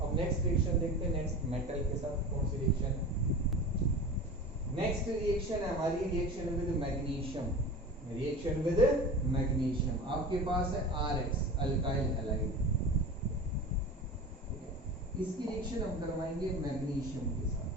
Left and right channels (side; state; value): both; normal; correlation 0.34